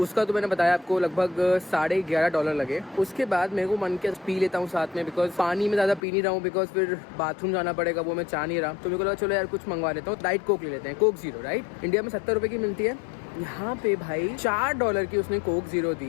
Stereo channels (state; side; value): drops out; right; at 6.0 s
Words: उसका तो मैंने बताया आपको लगभग $11.5 लगे। उसके बाद मेरे को मन किया पी लेता हूँ साथ में, बिकॉज पानी में ज़्यादा पी नहीं रहा हूँ, बिकॉज फिर बाथरूम जाना पड़ेगा, वो मैं चाह नहीं रहा। तो मेरे को लगा चलो यार कुछ मंगवा लेता हूँ, डाइट कोक ले लेते हैं, कोक जीरो। राइट, इंडिया में 70 रुपये की मिलती है, यहाँ पे भाई $4 की उसने कोक जीरो